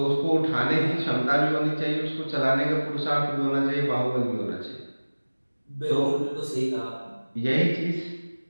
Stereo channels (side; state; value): both; inverted; correlation -1.00